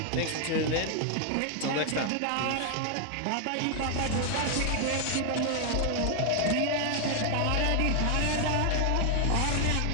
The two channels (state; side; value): different; both; correlation 0.00